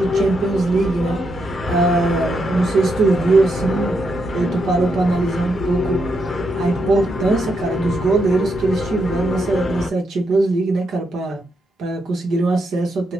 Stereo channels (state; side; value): normal; both; correlation 0.81